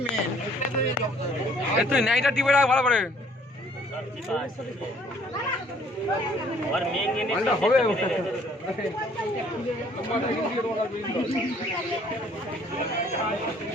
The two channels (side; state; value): both; normal; correlation 0.59